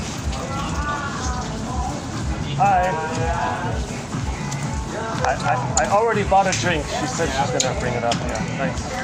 Hi. I already bought a drink. She said she's gonna bring it up. Yeah, thanks.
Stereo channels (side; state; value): both; identical; correlation 1.00